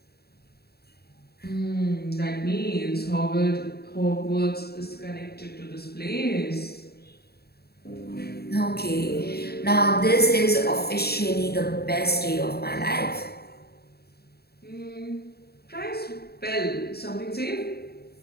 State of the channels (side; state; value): right; late; 0.46 ms